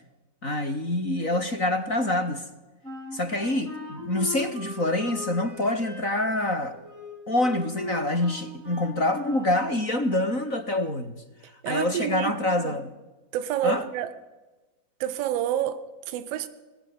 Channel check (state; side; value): late; right; 4.0 ms